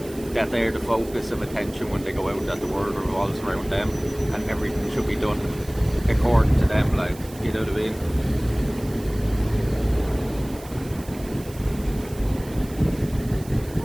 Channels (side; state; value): right; noise; hiss, 19 dB below the sound